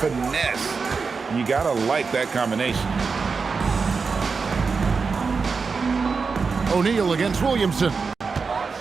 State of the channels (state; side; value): quieter; left; 4.9 dB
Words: You gotta like that combination. O'Neal against Williamson.